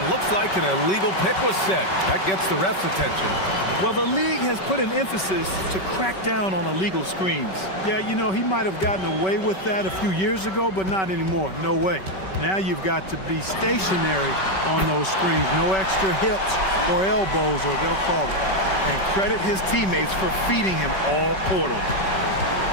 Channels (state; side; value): late; right; 5.3 ms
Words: looks like an illegal pick was set. That gets the ref's attention. Well, the league has put an emphasis to crack down on illegal screens. Yeah, you know, he might have gotten away with that a few years ago, but not anymore. No way. Now you've got to be stationary on those screens. No extra hips or elbows, or they'll call it. And credit his teammates for feeding him all quarter.